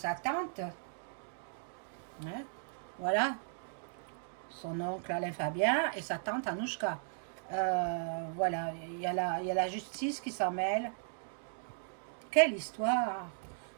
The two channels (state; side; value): silent; left; digital silence